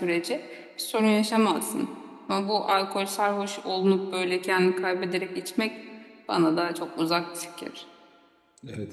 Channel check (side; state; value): both; identical; correlation 1.00